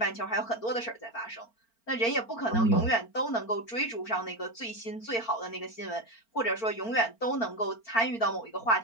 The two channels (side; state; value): right; late; 4.4 ms